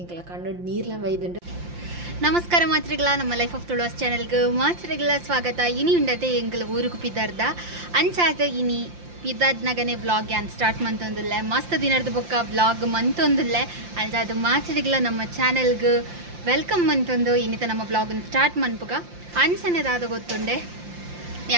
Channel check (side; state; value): left; late; 5.7 ms